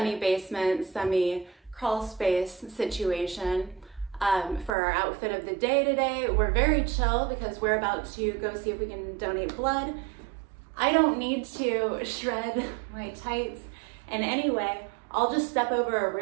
semi-crawl space situation for our outfit of the day today. We're very chill because we're about to go see if we can donate blood. I don't need to shred my tights in any way. I'll just step over a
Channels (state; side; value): drops out; left; at 4.8 s